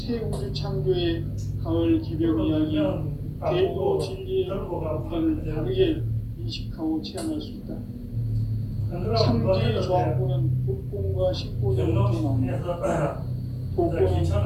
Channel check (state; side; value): identical; both; correlation 1.00